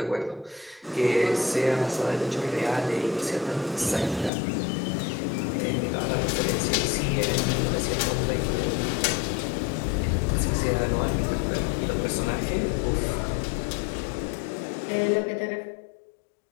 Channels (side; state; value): right; drops out; at 4.3 s